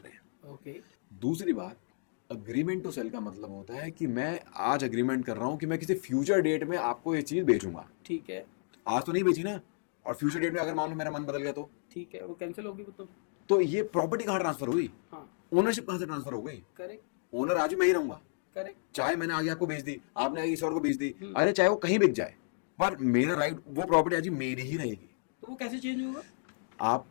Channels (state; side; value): silent; right; digital silence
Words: हैं। ओके। दूसरी बात, अग्रीमेंट टू सेल का मतलब होता है कि मैं आज अग्रीमेंट कर रहा हूँ कि मैं किसी फ्यूचर डेट में आपको ये चीज़ बेचूंगा। ठीक है। आज तो नहीं बेची ना, और फ्यूचर डेट में अगर मान लो मेरा मन बदल गया तो ठीक है, वो कैंसिल होगी वो तो ये प्रॉपर्टी कहाँ ट्रांसफर हुई? हाँ। ओनरशिप कहाँ से ट्रांसफर हो गई? करेक्ट। ओनर आज भी मैं ही रहूंगा। करेक्ट। चाहे मैंने आगे आपको बेच दी, आपने आगे किसी और को बेच दी, अरे चाहे वो कहीं बिक जाए, पर मेरा राइट, वो प्रॉपर्टी आज मेरी ही रहेगी। तो वो कैसे चेंज होगा? आप